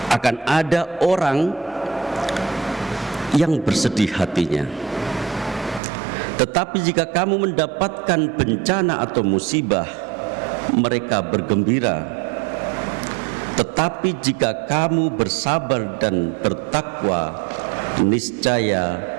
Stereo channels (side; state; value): left; drops out; at 5.8 s